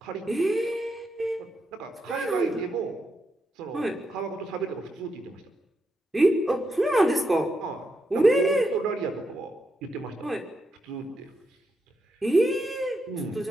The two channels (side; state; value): both; normal; correlation 0.83